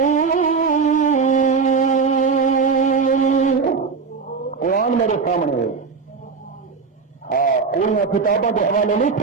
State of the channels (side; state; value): left; quieter; 5.1 dB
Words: قرآن میرے سامنے ہاں ان کتابوں کے حوالے نہیں